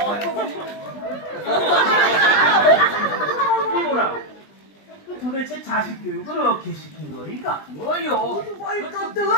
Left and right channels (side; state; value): right; late; 20 ms